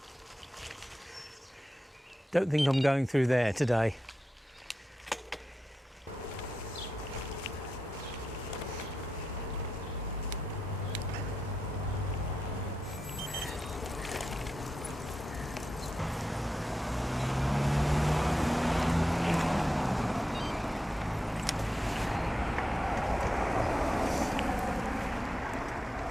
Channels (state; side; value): normal; both; correlation 0.88